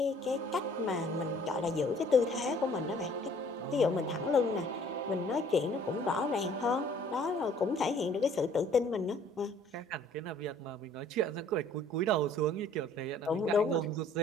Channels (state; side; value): normal; both; correlation 0.57